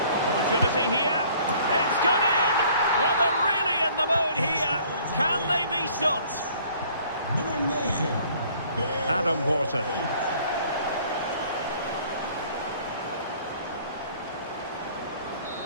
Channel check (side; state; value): both; inverted; correlation -0.56